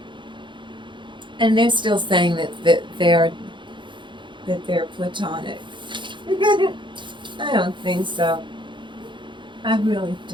And they're still saying that they're platonic. I don't think so. I really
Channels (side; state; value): left; late; 0.23 ms